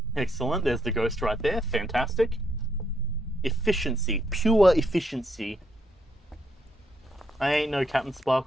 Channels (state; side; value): normal; both; correlation 0.76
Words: Excellent. There's the ghost right there. Fantastic. Efficiency. Pure efficiency. I ain't no Captain